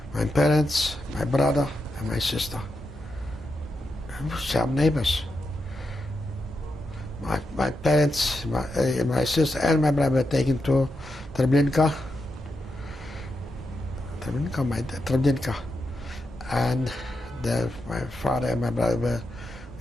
My parents, my brother, and my sister. Some neighbors. My parents, my sister, and my brother were taken to Treblinka. Treblinka. And my father and my brother were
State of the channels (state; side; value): normal; both; correlation 0.86